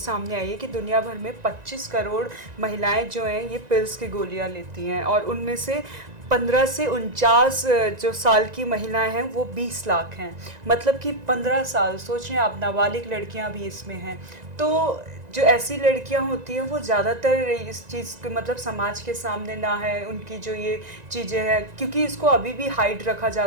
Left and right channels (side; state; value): left; late; 1.9 ms